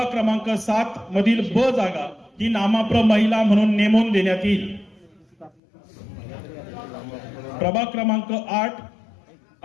क्रमांक 7 मधील ब जागा ही नामाप्र महिला म्हणून नेमून देण्यात येईल. प्रभाग क्रमांक 8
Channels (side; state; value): right; drops out; at 5.5 s